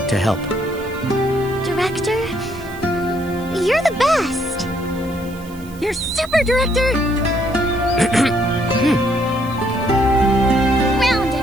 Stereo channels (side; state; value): right; noise; hiss, 22 dB below the sound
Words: to help. Director, you're the best. You're super, Director! Round